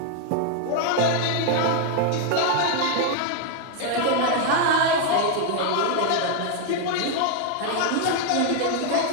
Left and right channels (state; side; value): different; both; correlation 0.00